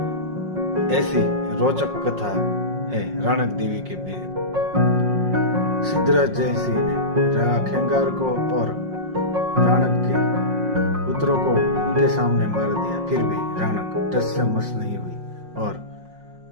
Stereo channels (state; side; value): late; left; 5.5 ms